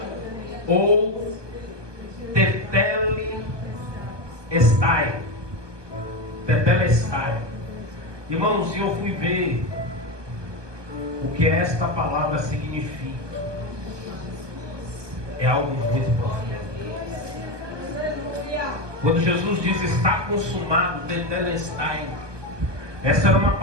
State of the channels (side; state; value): left; late; 1.2 ms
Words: Ou tetelestai. Tetelestai. Irmãos, eu fui ver o que esta palavra significa. É algo muito profundo. Quando Jesus diz está consumado, tetelestai, essa era uma